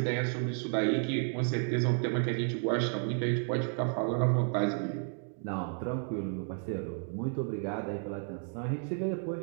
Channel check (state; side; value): silent; left; 56 dB below the other